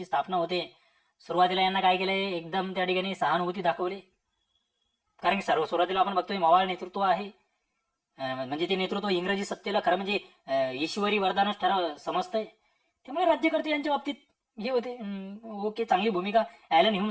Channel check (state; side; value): identical; both; correlation 1.00